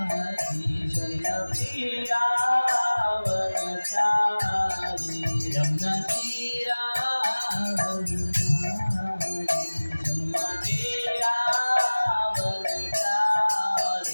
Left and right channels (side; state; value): both; inverted; correlation -1.00